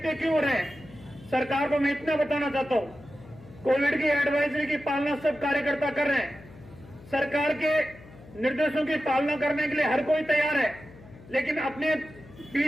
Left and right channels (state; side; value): noise; left; hum, 21 dB below the sound